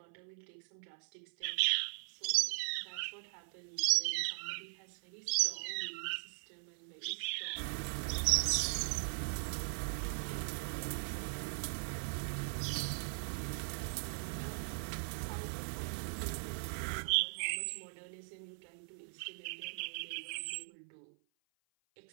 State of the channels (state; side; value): silent; left; 51 dB below the other